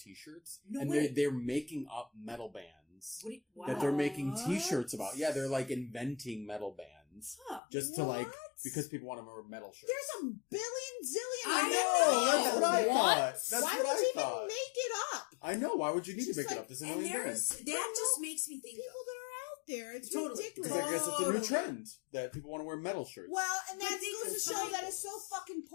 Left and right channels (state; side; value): drops out; right; at 7.6 s